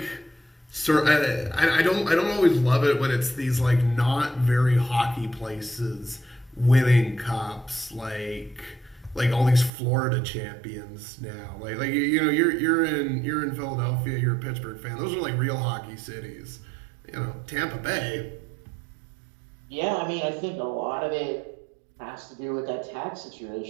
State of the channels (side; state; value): left; drops out; at 9.7 s